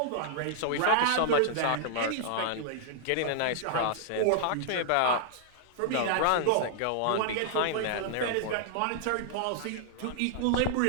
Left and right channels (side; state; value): both; different; correlation -0.01